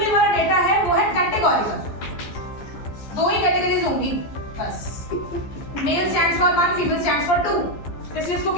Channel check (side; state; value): right; late; 14 ms